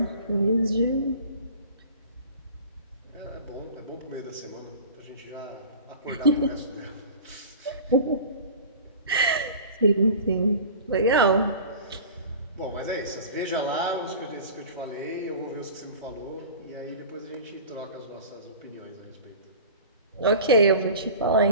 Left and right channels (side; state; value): both; inverted; correlation -0.40